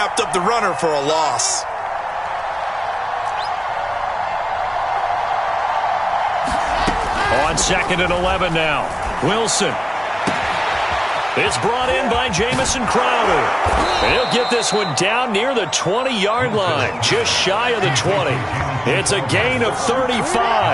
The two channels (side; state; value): both; identical; correlation 1.00